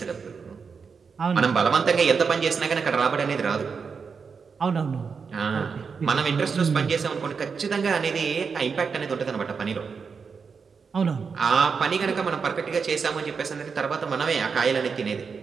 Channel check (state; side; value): quieter; left; 5.6 dB